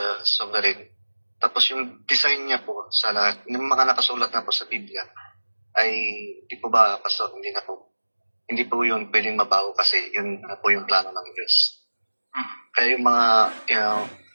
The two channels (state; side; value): inverted; both; correlation -1.00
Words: sovereign. Tapos yung design niya po sa lahat, yung mga nakasulat na po sa Biblia, ay di po ba, Pastor, hindi po yun pwedeng mabago kasi yun na po yung plano ng Diyos. Kaya yung mga,